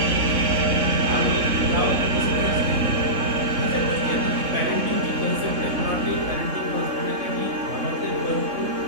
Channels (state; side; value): late; left; 3.6 ms